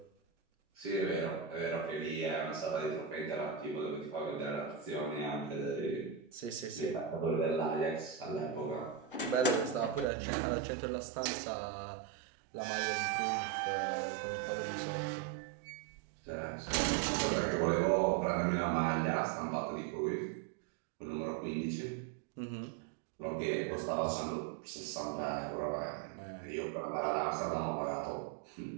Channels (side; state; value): left; drops out; at 10.1 s